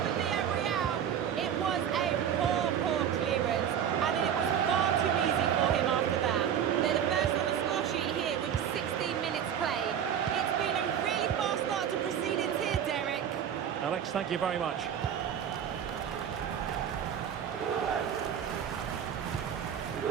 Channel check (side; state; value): left; quieter; 9.0 dB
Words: for Real. It was a poor clearance, and then it was far too easy for him after that. They're the first on the score sheet here with 16 minutes played. It's been a really fast start to proceedings here, Derek. Alex, thank you very much.